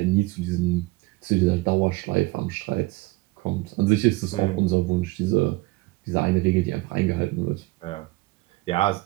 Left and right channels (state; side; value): quieter; left; 21.8 dB